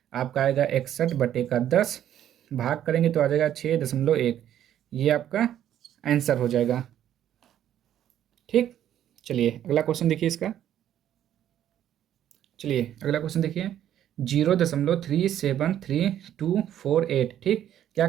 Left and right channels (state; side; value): quieter; left; 11.0 dB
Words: आपका आएगा 61 बटे का 10, भाग करेंगे तो आ जाएगा 6.1। ये आपका आंसर हो जाएगा। ठीक, चलिए अगला क्वेश्चन देखिए इसका। चलिए अगला क्वेश्चन देखिए, 0.37328। ठीक, क्या